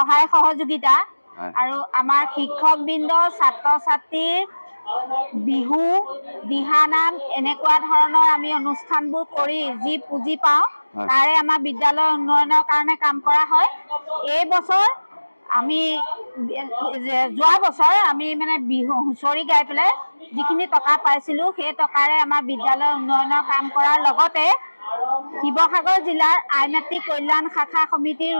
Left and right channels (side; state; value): both; inverted; correlation -1.00